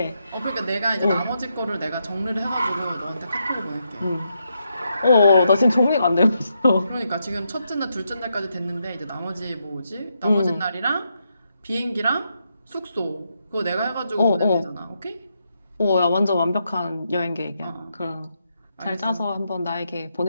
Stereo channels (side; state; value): both; inverted; correlation -0.81